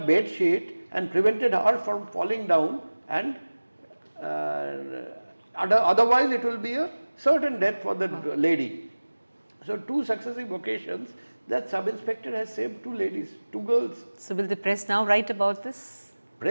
sheet and prevented her from falling down, and otherwise it will be a certain death for the lady. So two successive occasions that sub-inspector has saved two ladies, two girls. So will the press now write about this?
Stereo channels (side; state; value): both; inverted; correlation -1.00